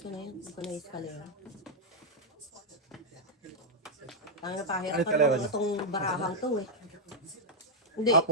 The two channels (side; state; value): both; normal; correlation -0.04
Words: ko na yun. Hindi ko na escalera. Ang napahirap Ano pa escalera naman niya? itong barahang to eh. Hindi, Ah,